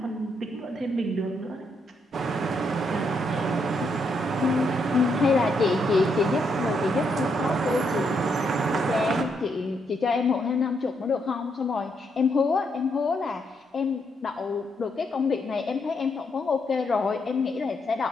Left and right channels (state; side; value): normal; both; correlation 0.77